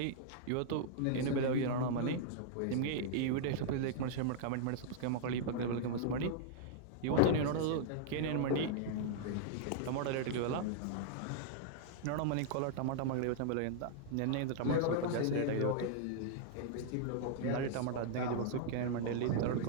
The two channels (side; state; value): both; different; correlation -0.01